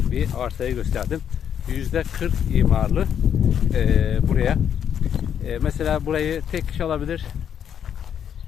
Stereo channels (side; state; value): right; quieter; 8.7 dB